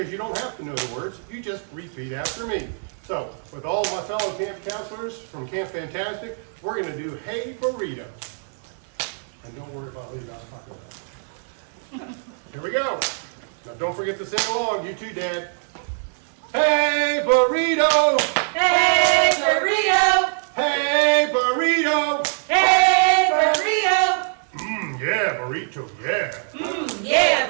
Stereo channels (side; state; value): left; silent; 63 dB below the other